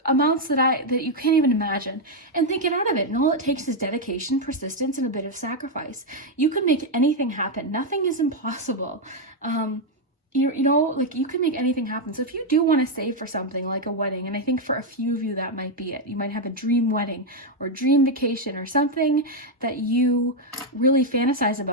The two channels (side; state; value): both; normal; correlation 0.01